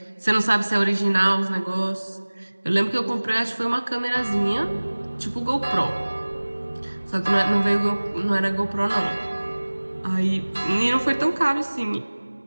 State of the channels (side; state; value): both; inverted; correlation -1.00